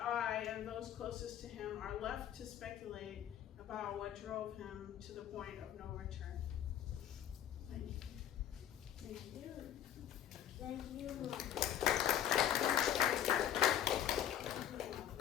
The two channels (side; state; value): right; quieter; 10.7 dB